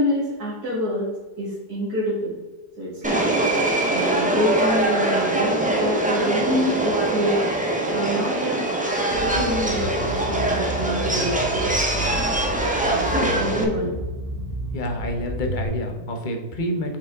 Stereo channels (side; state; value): both; normal; correlation 0.09